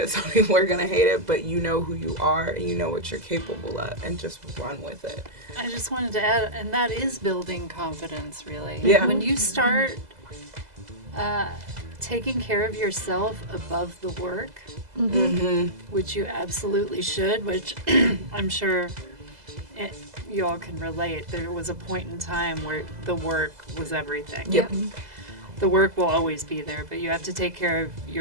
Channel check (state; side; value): late; left; 2.0 ms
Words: some people are going to hate it, but you know who you are and you know what you're capable of, and just run with it. I just wanted to add, and that is building confidence, really. Yeah. When you start taking care of yourself above the work, which you absolutely should, which I'm sure you all can relate. There was a point in time where the work was everything. Yep. The work will always be there, but you have to take care of